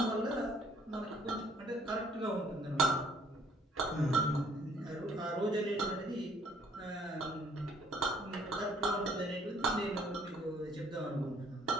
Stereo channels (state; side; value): normal; both; correlation 0.62